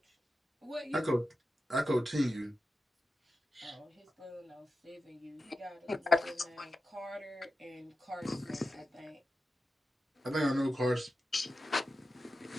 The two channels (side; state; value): both; normal; correlation 0.91